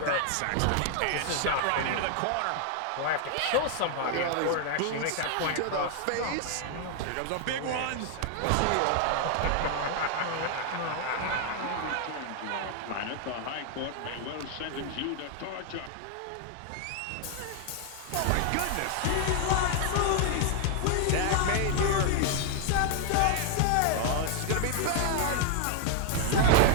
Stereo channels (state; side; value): different; both; correlation 0.00